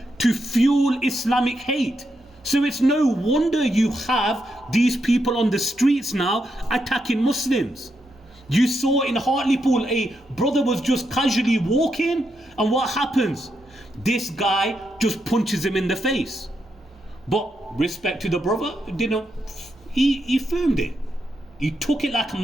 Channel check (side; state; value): both; normal; correlation 0.82